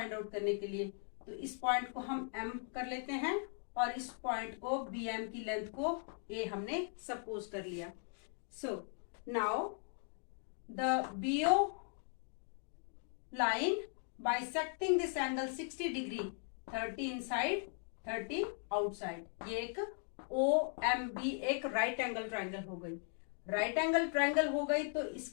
आउट करने के लिए तो इस पॉइंट को हम M कर लेते हैं और इस पॉइंट को BM की लेंथ को A हमने सपोज कर लिया। So now the BO line bisecting this angle 60 degree, 30 inside 30 outside, ये एक OMB एक राइट एंगल ट्राइंगल हो गई। राइट एंगल ट्राइंगल हो गई तो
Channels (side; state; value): right; silent; 52 dB below the other